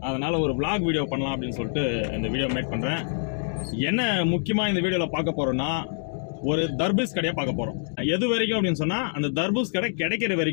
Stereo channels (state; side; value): silent; right; digital silence